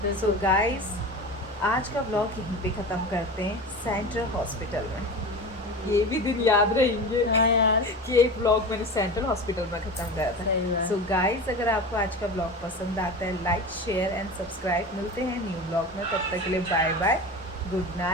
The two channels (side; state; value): both; normal; correlation 0.30